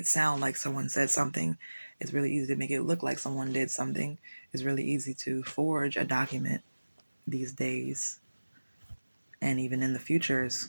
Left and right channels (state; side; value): inverted; both; correlation -1.00